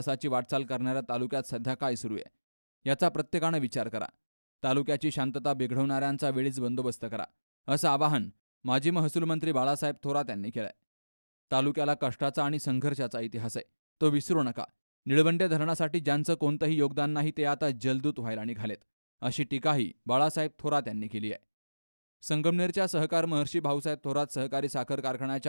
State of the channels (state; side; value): inverted; both; correlation -1.00